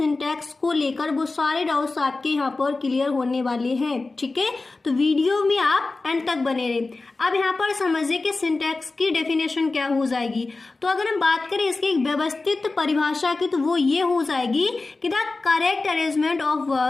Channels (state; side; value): quieter; right; 3.5 dB